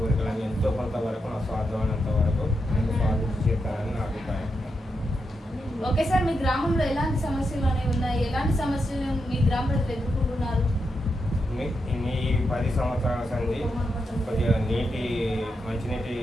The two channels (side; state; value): both; normal; correlation 0.85